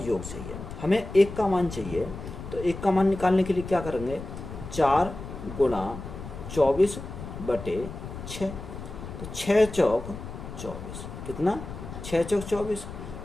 चाहिए। हमें 1 का मान चाहिए, तो 1 का मान निकालने के लिए क्या करेंगे? 4 गुणा 24 बटे 6। तो 6 चौक 24 कितना? 6 चौक 24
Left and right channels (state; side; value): noise; left; rumble, 10 dB below the sound